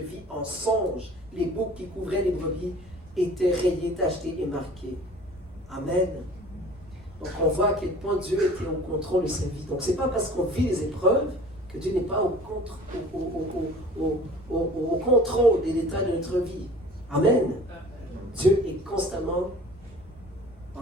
en songe. Les boucs qui couvraient les brebis étaient rayés, tachetés et marqués. Amen. Donc on voit à quel point Dieu était au contrôle de sa vie. Donc ce n'est pas parce qu'on vit les épreuves que Dieu n'est pas au contrôle des détails de notre vie. Amen. Dieu est constamment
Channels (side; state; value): both; normal; correlation 0.46